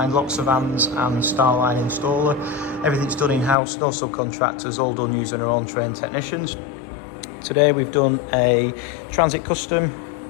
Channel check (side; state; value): right; drops out; at 3.6 s